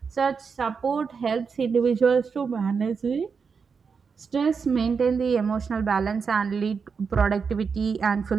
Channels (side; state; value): left; quieter; 5.6 dB